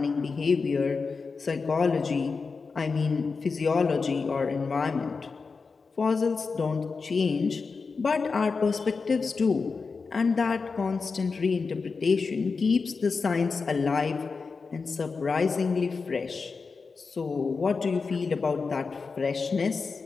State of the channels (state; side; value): quieter; right; 4.7 dB